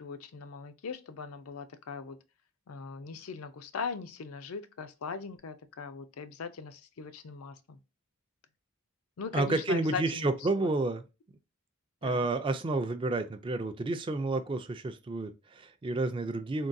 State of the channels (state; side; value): normal; both; correlation 0.49